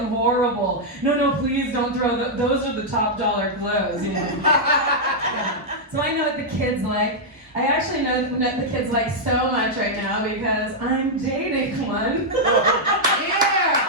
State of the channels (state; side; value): normal; both; correlation -0.04